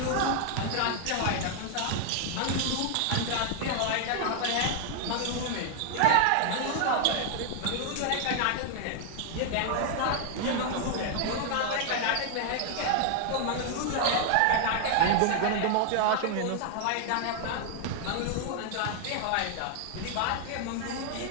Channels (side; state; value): both; different; correlation 0.00